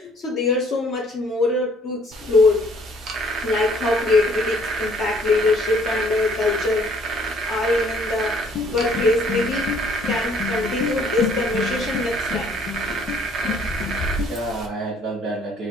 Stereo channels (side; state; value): both; normal; correlation 0.61